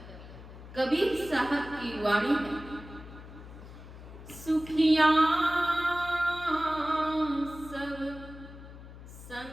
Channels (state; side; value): noise; left; hum, 15 dB below the sound